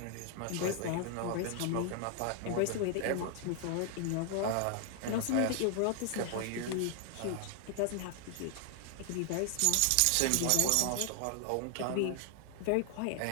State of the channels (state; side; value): different; both; correlation 0.00